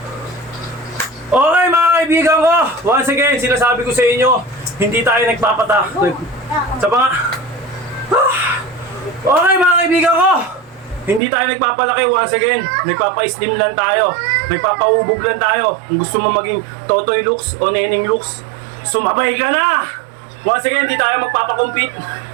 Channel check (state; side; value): drops out; left; at 11.2 s